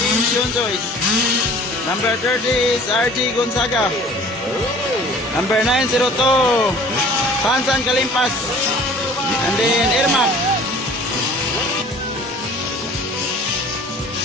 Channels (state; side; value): normal; both; correlation 0.49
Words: Shunjoys. Number 30 is RG Gonzaga. Number 902, Sansan Kalimpas. And then Irma.